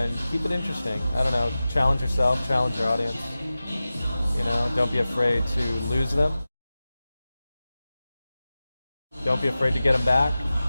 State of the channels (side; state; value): both; inverted; correlation -0.95